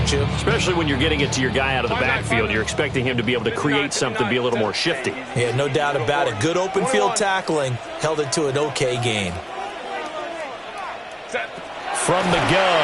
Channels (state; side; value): identical; both; correlation 1.00